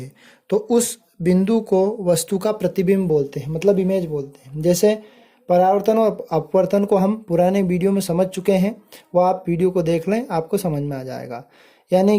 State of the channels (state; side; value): identical; both; correlation 1.00